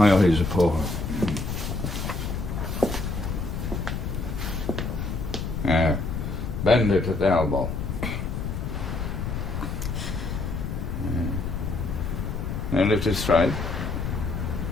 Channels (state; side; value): noise; left; rumble, 3 dB below the sound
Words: eyes are poor. Yeah. Bend it at the elbow. Yeah. Now lift it straight.